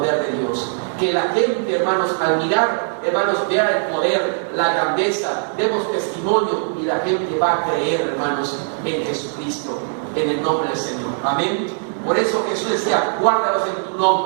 de Dios. Que la gente, hermanos, al mirar, hermanos, vea el poder, la grandeza, demos testimonio, y la gente va a creer, hermanos, en Jesucristo, en el nombre del Señor. Amén. Por eso Jesús decía: guárdalos en tu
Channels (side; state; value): left; silent; digital silence